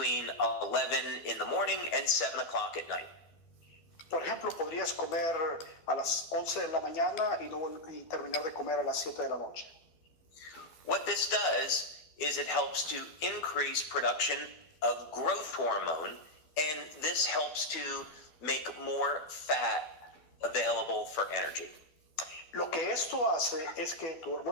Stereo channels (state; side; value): late; right; 12 ms